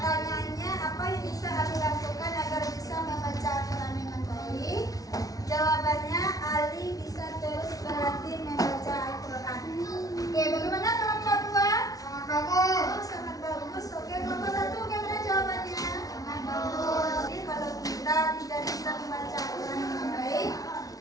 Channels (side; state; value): right; late; 0.18 ms